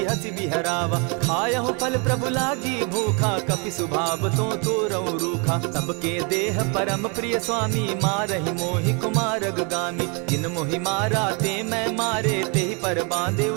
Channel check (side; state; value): left; quieter; 33.8 dB